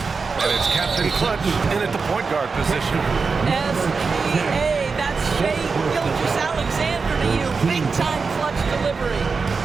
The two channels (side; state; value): left; quieter; 4.8 dB